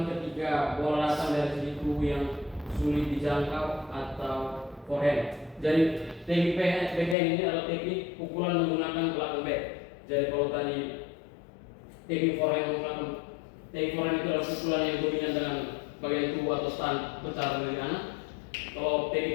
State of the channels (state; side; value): drops out; right; at 7.2 s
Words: ketika bola datang dari sisi tubuh yang sulit dijangkau atau forehand. Jadi teknik backhand ini adalah teknik pukulan menggunakan belakang bat. Jadi kalau tadi teknik forehand itu adalah pukulan yang dominan dengan bagian tubuh atau stand besar dari kanan. Kalau